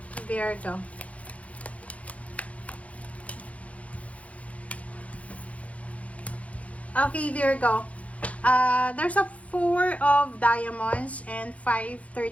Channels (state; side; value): late; right; 0.066 ms